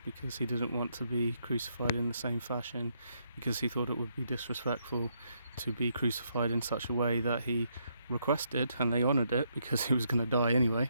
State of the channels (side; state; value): both; inverted; correlation -0.75